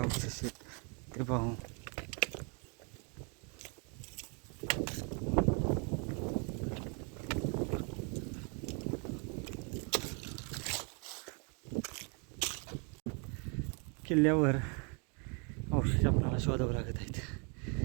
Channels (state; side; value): quieter; left; 36.2 dB